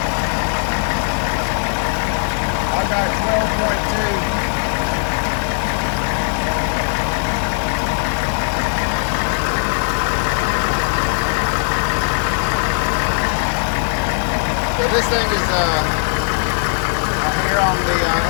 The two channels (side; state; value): right; silent; 61 dB below the other